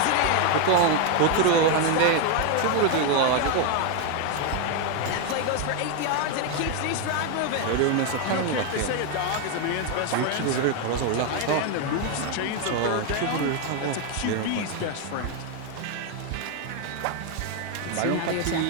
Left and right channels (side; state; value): both; different; correlation 0.01